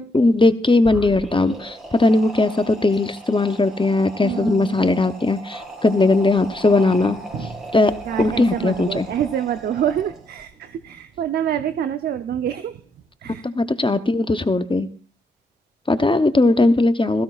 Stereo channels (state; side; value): normal; both; correlation 0.77